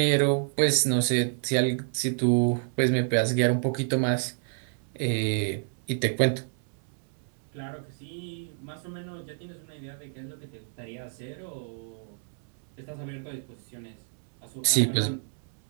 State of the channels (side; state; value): left; silent; 59 dB below the other